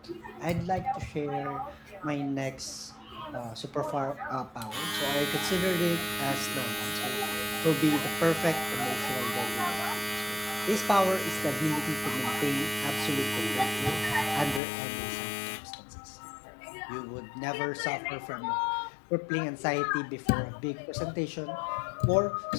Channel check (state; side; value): drops out; right; at 14.6 s